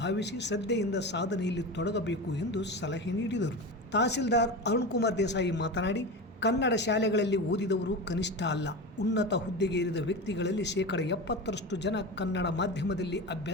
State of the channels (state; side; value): normal; both; correlation 0.25